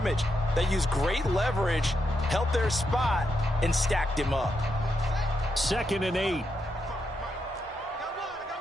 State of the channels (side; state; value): both; normal; correlation 0.83